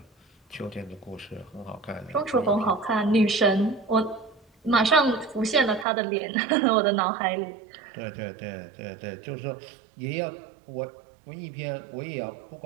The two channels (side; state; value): left; drops out; at 5.9 s